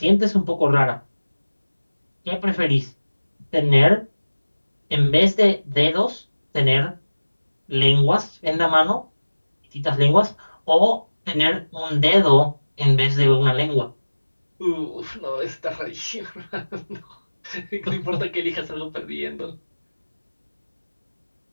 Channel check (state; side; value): inverted; both; correlation -1.00